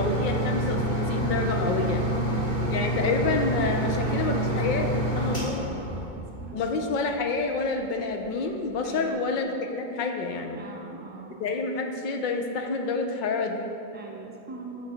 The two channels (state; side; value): late; right; 2.2 ms